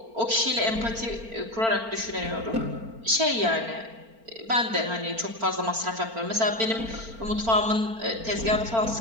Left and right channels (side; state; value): left; late; 4.4 ms